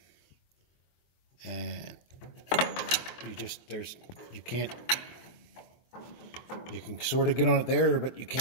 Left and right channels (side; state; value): right; late; 24 ms